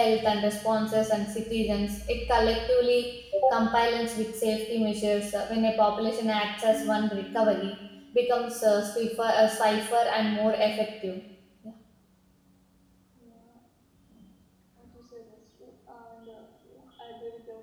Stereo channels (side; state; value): both; identical; correlation 1.00